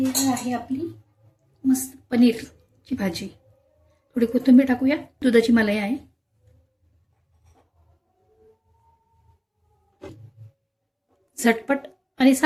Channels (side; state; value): both; identical; correlation 1.00